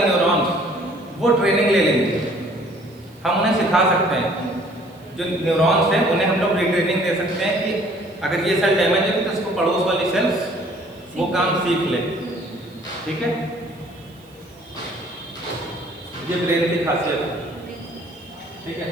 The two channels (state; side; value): noise; right; hiss, 30 dB below the sound